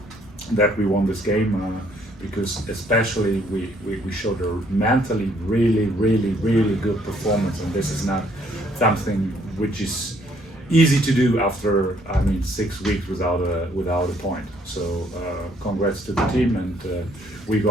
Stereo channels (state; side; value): normal; both; correlation 0.66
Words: that we won this game because especially we showed a mentally really good performance, and this is not something which is easy to do after 6 weeks without a point. So congrats to the team, and we're